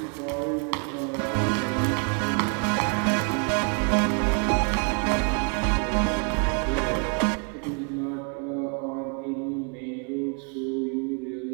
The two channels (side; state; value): left; quieter; 39.0 dB